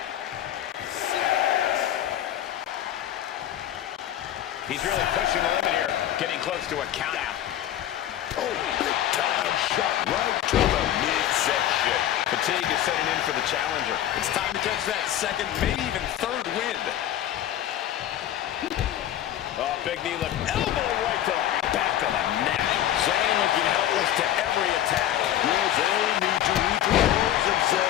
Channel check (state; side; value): quieter; right; 11.8 dB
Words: He's really pushing the limit here, getting close to a count out. Oh, big time shot right to the midsection. Fatigue is setting in for the challenger. It's time to catch that second, maybe even third wind. Oh, big knee lift. Elbow right to the back of the neck. Zayn looking helpless to every attack. Will Zayn need to recompose